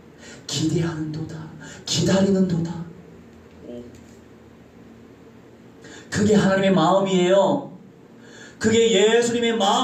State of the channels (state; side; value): identical; both; correlation 1.00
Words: 기대하는도다, 기다리는도다. 그게 하나님의 마음이에요. 그게 예수님의